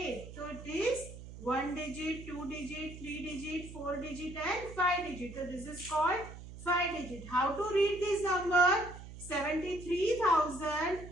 So it is 1 digit, 2 digit, 3 digit, 4 digit and 5 digit. So this is called 5 digit. How to read this number?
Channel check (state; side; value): noise; right; hum, 13 dB below the sound